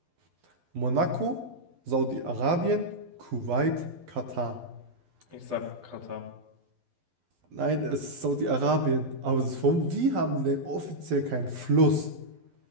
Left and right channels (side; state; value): left; late; 12 ms